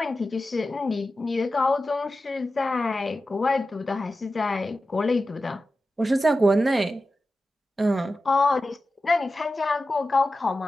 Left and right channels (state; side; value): normal; both; correlation 0.93